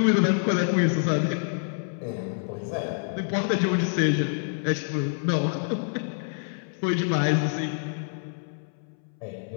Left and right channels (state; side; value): silent; right; 60 dB below the other